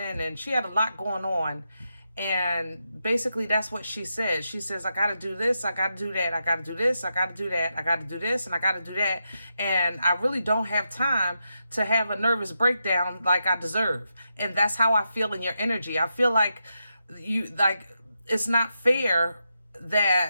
she had a lot going on. And basically that's what she says. She says, I got to do this, I got to do that, I got to do this, I got to do that, I got to do this, and I got to do that. And I really don't have time to have a nervous breakdown like I deserve. And that's how I feel in your energy. I feel like it's not fair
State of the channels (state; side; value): inverted; both; correlation -0.86